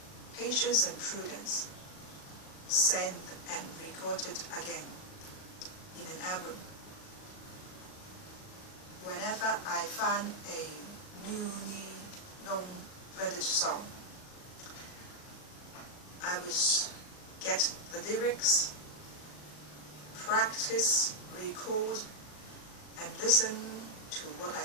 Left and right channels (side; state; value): right; late; 38 ms